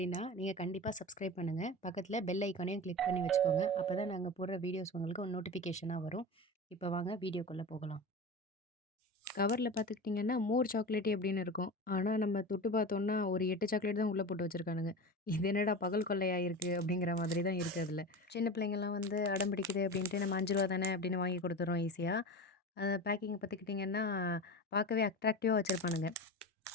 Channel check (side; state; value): both; normal; correlation 0.28